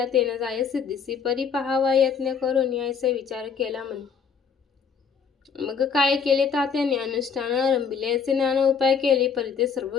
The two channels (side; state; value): right; quieter; 6.4 dB